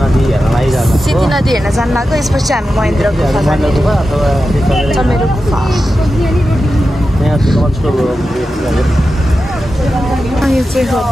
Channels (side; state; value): both; normal; correlation 0.91